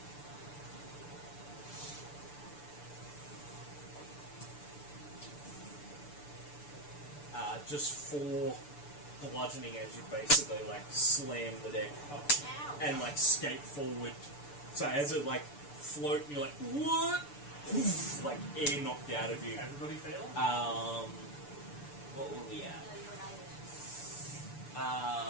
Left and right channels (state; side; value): late; right; 6.9 ms